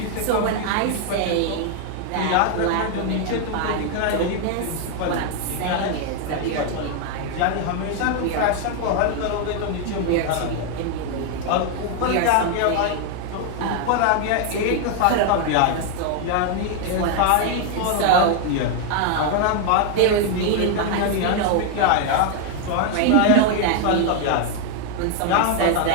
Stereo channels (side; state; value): both; different; correlation 0.00